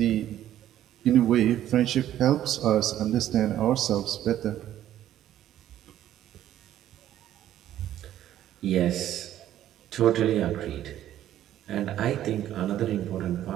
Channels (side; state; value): left; quieter; 12.2 dB